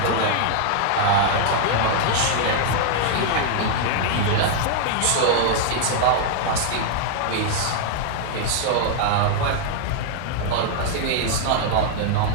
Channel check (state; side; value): different; both; correlation -0.01